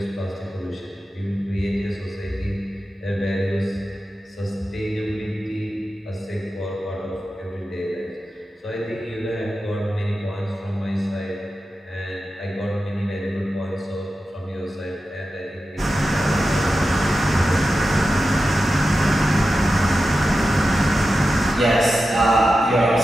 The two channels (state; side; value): normal; both; correlation 0.92